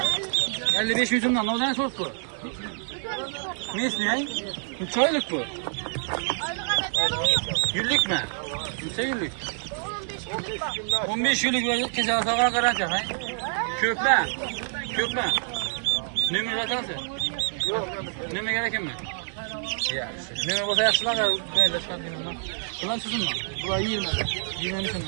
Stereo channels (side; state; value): left; silent; 56 dB below the other